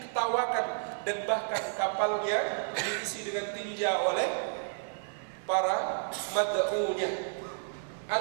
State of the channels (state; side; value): silent; left; digital silence